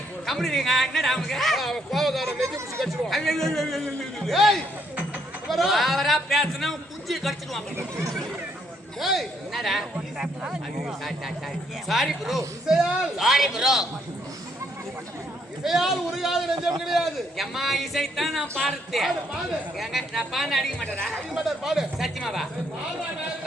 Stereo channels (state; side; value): normal; both; correlation 0.71